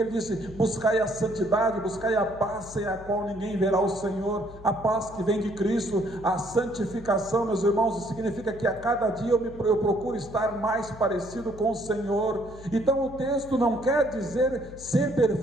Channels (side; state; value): left; noise; hum, 17 dB below the sound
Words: disse: buscai a santidade, buscai a paz sem a qual ninguém verá o Senhor. A paz que vem de Cristo, a santificação, meus irmãos, significa que a cada dia eu procuro estar mais parecido com o Senhor. Então o texto não quer dizer ser